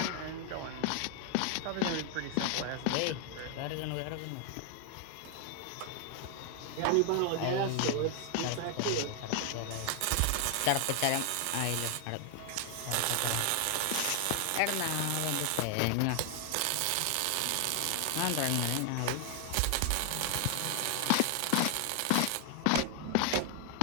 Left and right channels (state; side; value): different; both; correlation 0.00